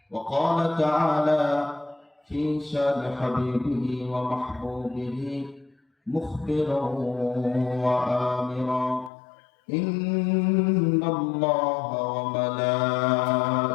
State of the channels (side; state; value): right; drops out; at 9.1 s